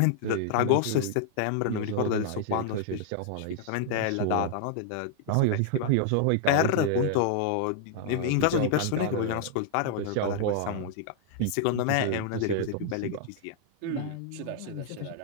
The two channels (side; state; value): both; different; correlation -0.01